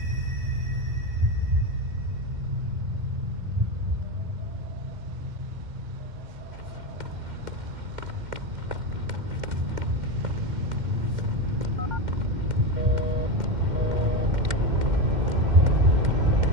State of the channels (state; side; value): late; left; 2.1 ms